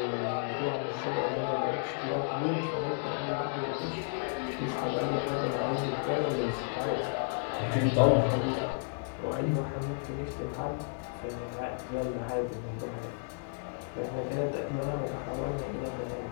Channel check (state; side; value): silent; right; digital silence